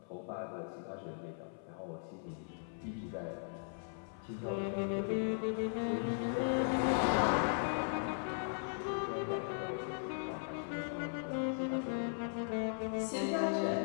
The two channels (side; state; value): right; silent; 52 dB below the other